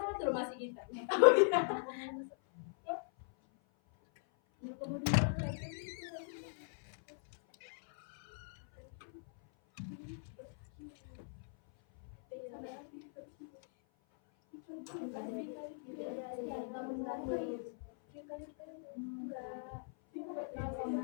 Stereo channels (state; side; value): silent; right; 51 dB below the other